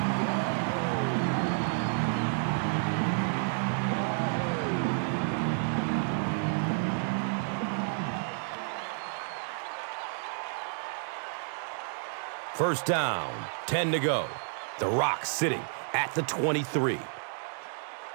First down, 10 to go. The Rock sitting at the 23.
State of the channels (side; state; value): left; silent; 57 dB below the other